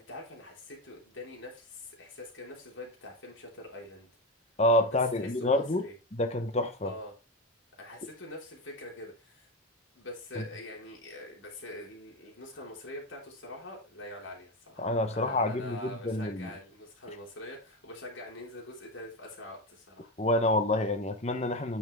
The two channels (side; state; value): both; normal; correlation 0.16